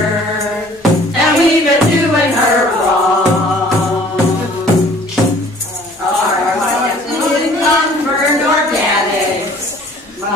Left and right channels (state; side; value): normal; both; correlation 0.53